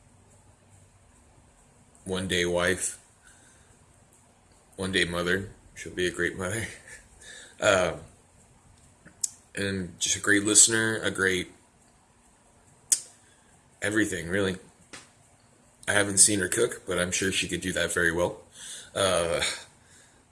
one day wife, one day mother. She'll be a great mother. Uh, and just a great listener, a great everything, really. I haven't seen her cook, but I'm sure she could do that very well. Uh,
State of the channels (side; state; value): both; identical; correlation 1.00